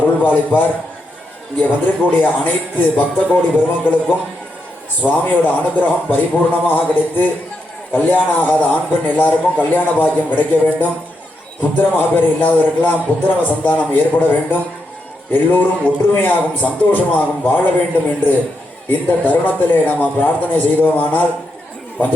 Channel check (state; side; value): normal; both; correlation 0.83